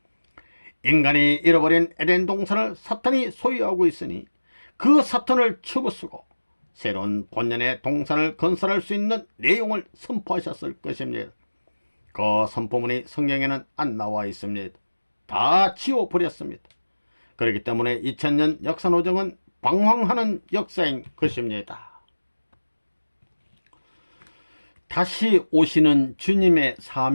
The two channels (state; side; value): inverted; both; correlation -1.00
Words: 인간이 잃어버린 에덴 동산을 사탄이 소유하고 있으니 그 사탄을 치부수고 새로운 본연의 동산을 건설할 수 있는 내용을 선포하셨을 것입니다. 그 선포문이 성경에는 안 나와 있습니다. 다 지워버렸습니다. 그렇기 때문에 2000년 역사노정은 방황하는 역사인 것입니다. 다시 오시는 주님의